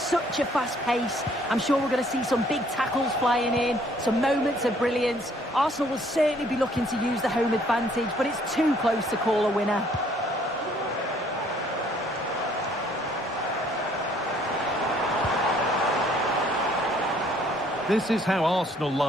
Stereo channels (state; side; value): normal; both; correlation 0.62